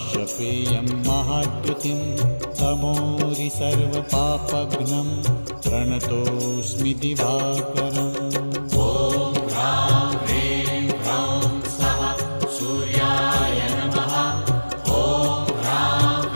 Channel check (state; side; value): inverted; both; correlation -1.00